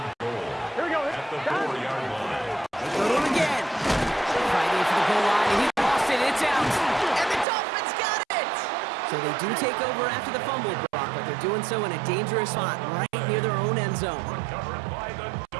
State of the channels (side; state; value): left; drops out; at 7.5 s